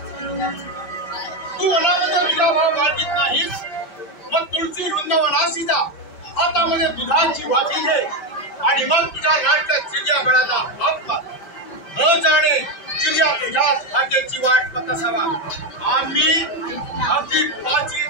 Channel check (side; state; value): right; late; 5.1 ms